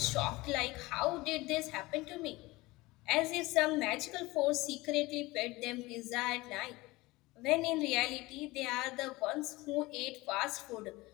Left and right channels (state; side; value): quieter; right; 21.1 dB